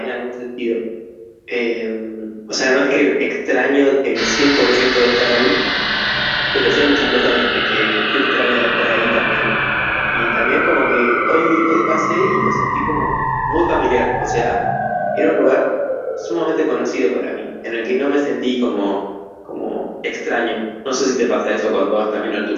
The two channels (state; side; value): identical; both; correlation 1.00